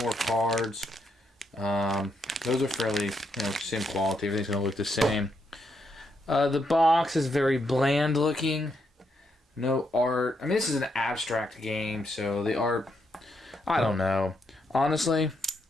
more cards. Those are fairly, same quality. Everything's going to look the same. The box is very bland looking. No art. I mean, this is an abstract game, so the art, I don't know. Honestly,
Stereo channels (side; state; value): both; normal; correlation 0.79